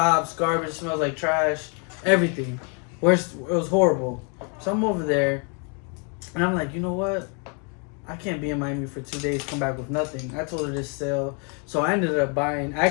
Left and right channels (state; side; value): quieter; right; 37.1 dB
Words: garbage, smells like trash, everything. Worst, it was horrible. So I'm over there, and I'm like, you know what? I can't be in Miami for 2 days, come back with nothing. I told her this sale. So I ended up buying,